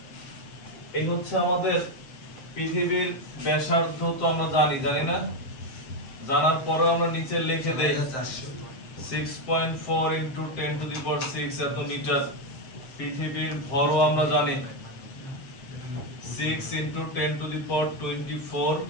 এই হচ্ছে আমাদের পৃথিবীর ব্যাসার্ধ। তো আমরা জানি না, জানার পরে আমরা নিচে লিখে দেই 6.4 × 10⁶ এত মিটার। পৃথিবীর ভরও আমরা জানি 6 × 10⁻24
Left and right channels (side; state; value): right; late; 7.7 ms